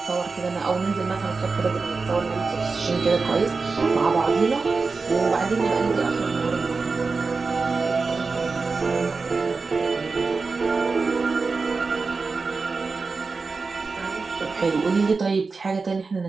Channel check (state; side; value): quieter; left; 4.3 dB